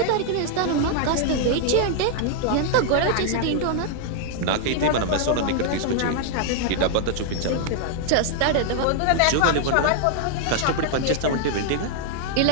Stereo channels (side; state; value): both; different; correlation 0.00